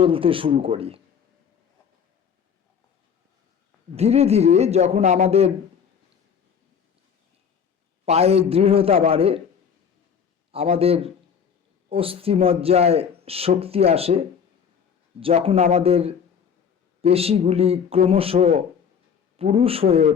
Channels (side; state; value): right; quieter; 7.2 dB